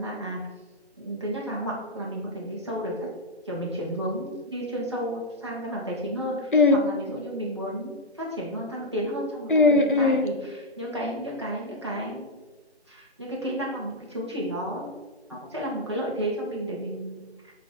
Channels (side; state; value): both; normal; correlation -0.02